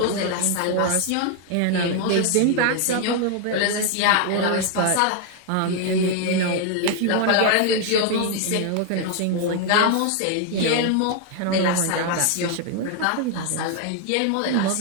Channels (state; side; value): different; both; correlation 0.00